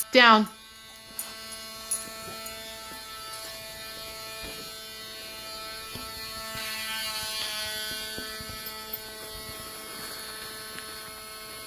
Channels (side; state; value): both; identical; correlation 1.00